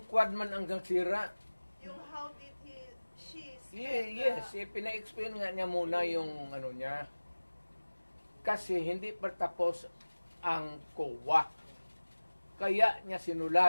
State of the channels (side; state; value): both; inverted; correlation -1.00